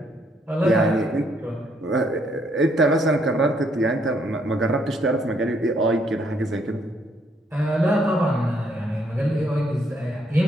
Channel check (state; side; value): normal; both; correlation 0.71